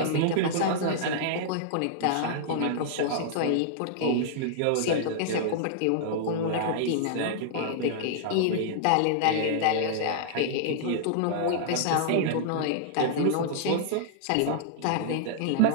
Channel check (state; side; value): different; both; correlation -0.01